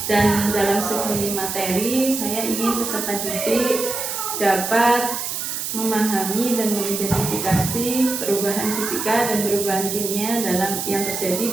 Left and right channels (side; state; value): right; noise; hiss, 4 dB below the sound